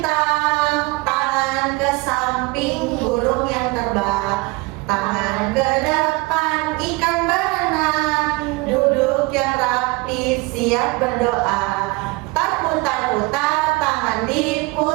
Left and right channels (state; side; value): quieter; left; 24.8 dB